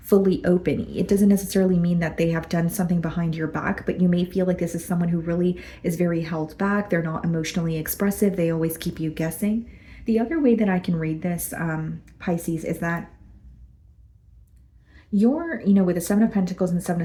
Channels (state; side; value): identical; both; correlation 1.00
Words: fully open. It doesn't necessarily mean that they have done something behind your back, but you may feel like this is someone who really is very held back. They're not emotionally expressive. They always keep you guessing. The other way that I can read this, Pisces, is that with the Seven of Pentacles and the Seven